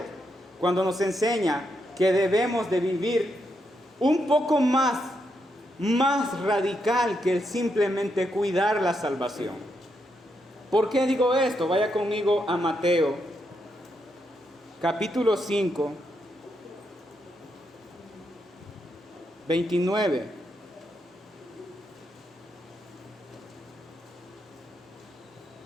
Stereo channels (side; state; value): both; normal; correlation 0.81